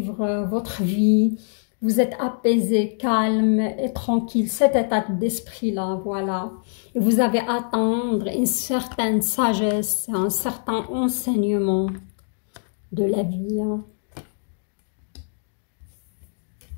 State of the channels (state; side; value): silent; right; 58 dB below the other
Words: votre vie. Vous êtes apaisé, calme et tranquille. Cet état d'esprit-là, voilà. Et vous avez à attendre une certaine sagesse, un certain enseignement de la vie, hein.